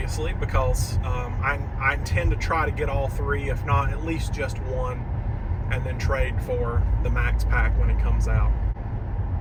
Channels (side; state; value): both; identical; correlation 1.00